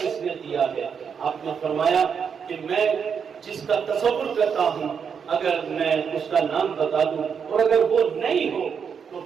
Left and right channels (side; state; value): left; quieter; 6.8 dB